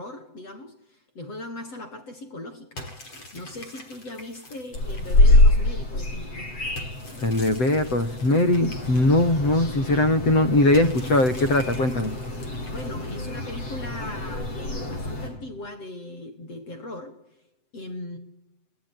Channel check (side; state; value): right; late; 7.9 ms